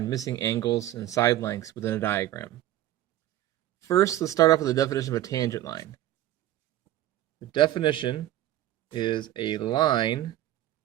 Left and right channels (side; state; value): left; quieter; 14.1 dB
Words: missing angles and side lengths within a diagram. First, let's start off with the definition of a tangent line. The definition is a line